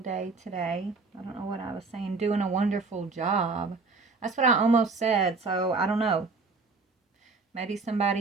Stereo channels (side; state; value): left; quieter; 4.1 dB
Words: today. I don't know what I was saying. Doing a wonderful job. That's what I almost said, so I don't know. Maybe